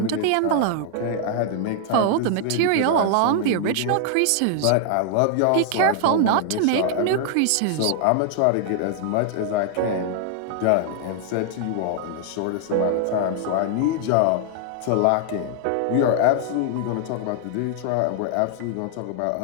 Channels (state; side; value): different; both; correlation 0.00